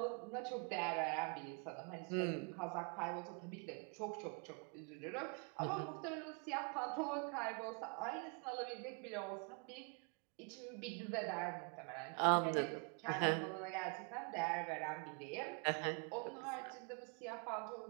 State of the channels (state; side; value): quieter; left; 37.0 dB